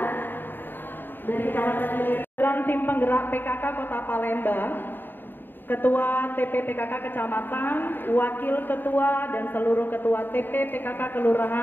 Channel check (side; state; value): right; late; 0.094 ms